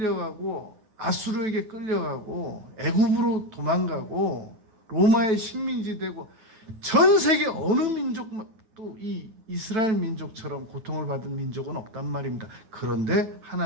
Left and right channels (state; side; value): late; left; 9.1 ms